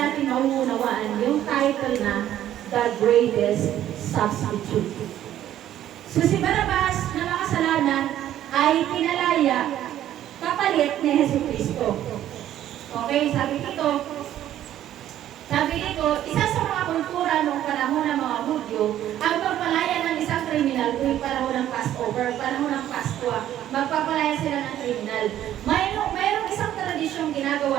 mauunawaan yung title na The Greatest Substitute. So si Barabas na makasalanan ay pinalaya kapalit ni Jesucristo. Okay, sabi dito, isa sa mga kultura noong panahon Hudyo, ang pagpalaya ng isang kriminal tuwing panahon ng Passover, panahon ng Paskwa, magpapalaya sila ng kriminal. Mayroong isang tradisyong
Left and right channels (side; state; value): left; quieter; 12.0 dB